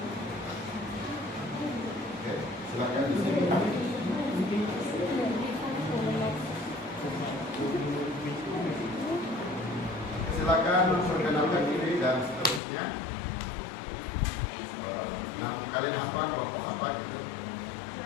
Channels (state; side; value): drops out; right; at 12.6 s